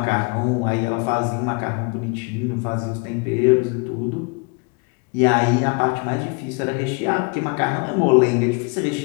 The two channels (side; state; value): right; quieter; 32.9 dB